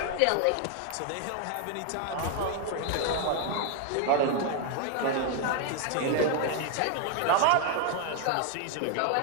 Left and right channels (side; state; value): both; different; correlation 0.00